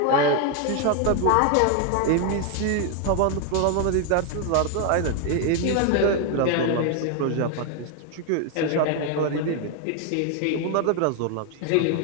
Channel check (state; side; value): different; both; correlation 0.01